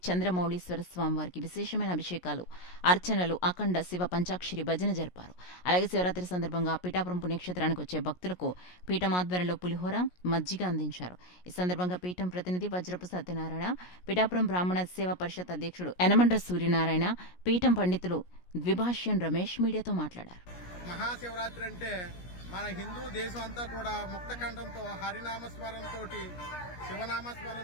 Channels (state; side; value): late; right; 17 ms